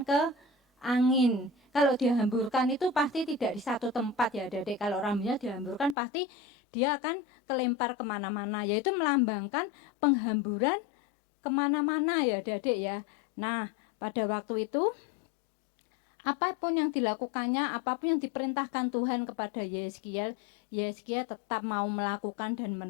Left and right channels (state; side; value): drops out; right; at 6.0 s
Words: ke angin. Kalau dihamburkan itu pasti tidak di satu tempat ya, adik-adik. Kalau rambutnya dihamburkan pasti dia akan kelempar kemana-mana, yaitu melambangkan penghamburan kemana-mana ya, adik-adik ya. Nah, pada waktu itu apapun yang dilakukannya, apapun yang diperintahkan Tuhan kepada Yeskiel, Yeskiel tetap mau melakukan dan